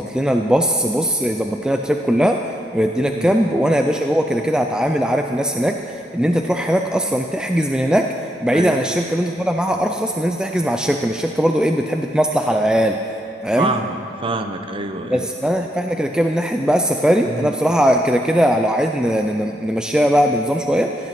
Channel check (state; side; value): normal; both; correlation 0.80